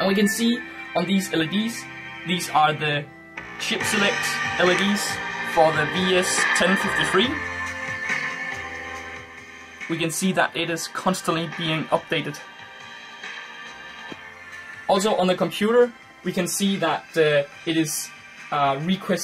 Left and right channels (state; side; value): identical; both; correlation 1.00